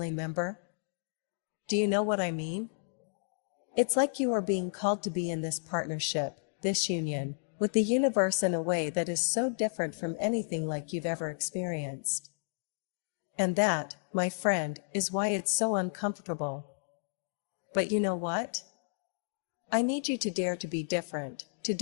member? Do you know what I mean? It's like you are being called to be in this partnership, this union, with the universe in a way that is so different from anything like you've ever experienced. And that, my friend, is why it's so uncomfortable. But you know what? I need you to dare to be different, to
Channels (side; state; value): right; silent; digital silence